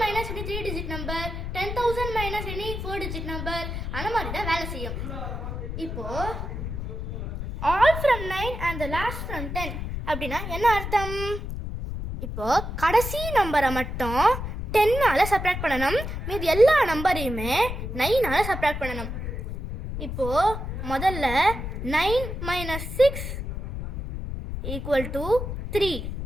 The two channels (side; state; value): left; noise; rumble, 5 dB below the sound